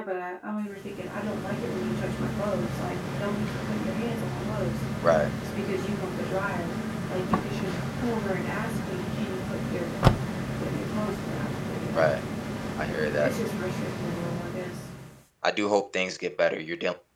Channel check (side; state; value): both; identical; correlation 1.00